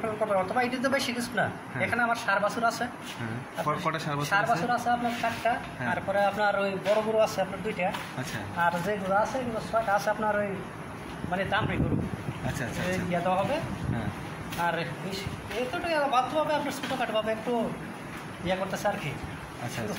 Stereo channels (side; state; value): both; identical; correlation 1.00